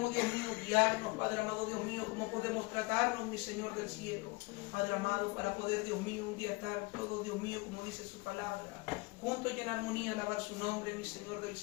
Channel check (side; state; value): right; quieter; 24.6 dB